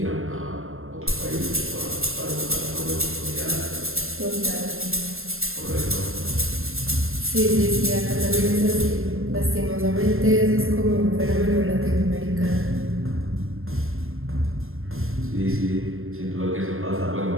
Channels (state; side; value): late; left; 0.61 ms